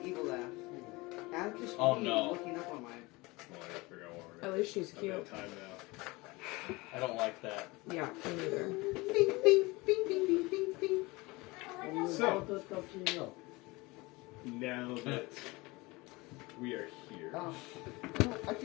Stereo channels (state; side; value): quieter; right; 23.3 dB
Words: evil laugh. Atticus Oh, Lee no. looking up on my. Well, I gotta figure out what we're At gonna least she's do. I've cute. got time now. I don't like that. Yeah, me neither. Bing, bing, bing, bing, bing, bing, bing. So, That's up to you. now that we are here, Oh, I